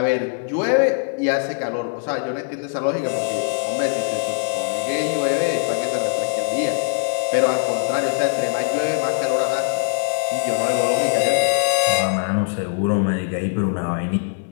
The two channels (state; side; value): silent; right; 65 dB below the other